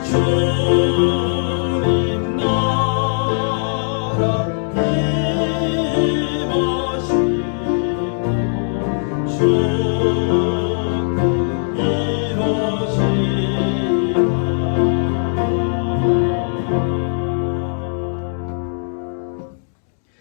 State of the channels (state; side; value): silent; right; digital silence